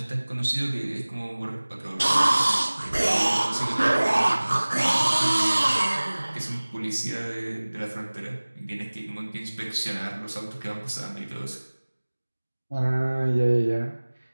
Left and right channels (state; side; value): inverted; both; correlation -1.00